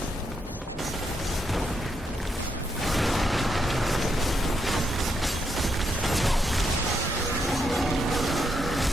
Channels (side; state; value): both; normal; correlation 0.80